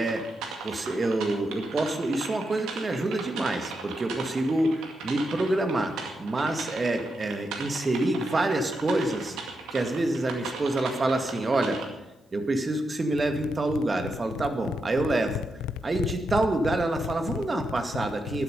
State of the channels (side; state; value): both; normal; correlation 0.85